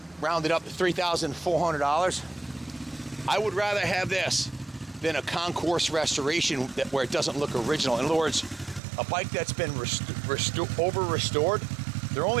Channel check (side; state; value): left; drops out; at 8.8 s